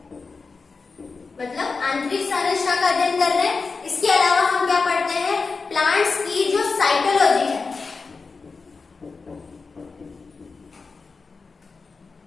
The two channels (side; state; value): right; quieter; 4.4 dB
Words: मतलब आंतरिक संरचना का अध्ययन कर रहे हैं। इसके अलावा हम क्या पढ़ते हैं, प्लांट्स की जो साइटोलॉजी है,